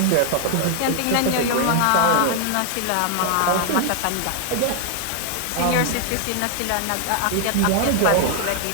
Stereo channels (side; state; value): both; different; correlation 0.00